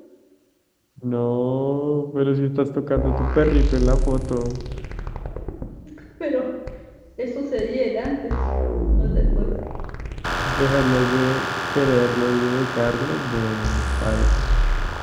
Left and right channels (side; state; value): both; identical; correlation 1.00